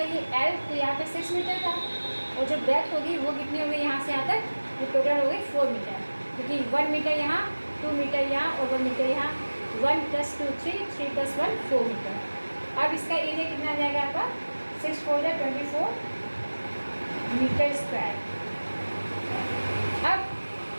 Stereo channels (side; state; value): both; inverted; correlation -1.00